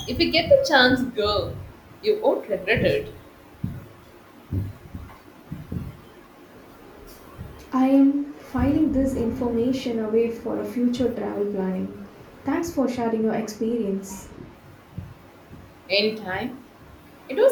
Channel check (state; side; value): identical; both; correlation 1.00